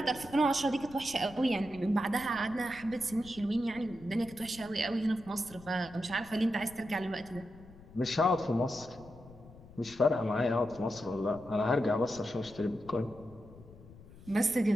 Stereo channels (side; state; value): left; noise; rumble, 20 dB below the sound